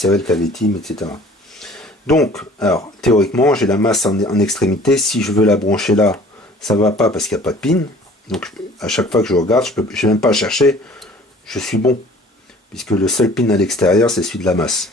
le KV-Team, etc. Donc, alors, théoriquement, j'ai la masse en extrémité. Si je veux la brancher là, ça ne va pas parce qu'il n'y a pas de pin. Donc, à chaque fois que je regarde, je n'ai même pas à chercher. Je suis bon. Puisque le seul pin à l'extérieur, c'est celui de la masse.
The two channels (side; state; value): both; normal; correlation 0.49